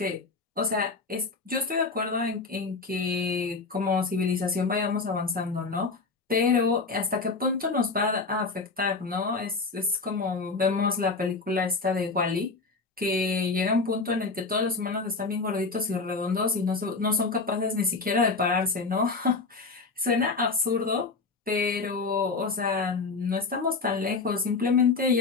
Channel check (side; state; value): right; quieter; 4.1 dB